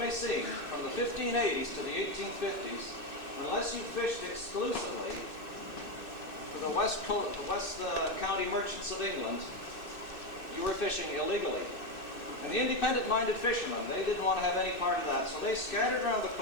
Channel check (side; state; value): right; late; 2.6 ms